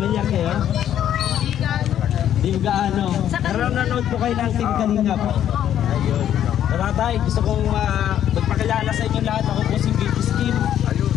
kayo? Di gaano. Pero nanood po kayo ng Team Kalingap. Ayun. Tatay, gusto kong magpakilala sa inyo lahat. Ako po si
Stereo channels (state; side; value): quieter; right; 10.6 dB